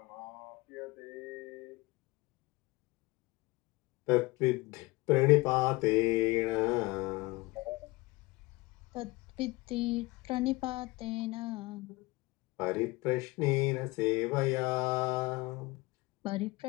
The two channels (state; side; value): quieter; right; 22.5 dB